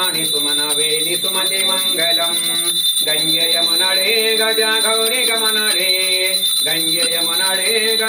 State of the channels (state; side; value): identical; both; correlation 1.00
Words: सुमनवेनि सुमते मङ्गलम् गङ्गे यमुनळे गजा गौरी गमनळे गङ्गे यमुनळे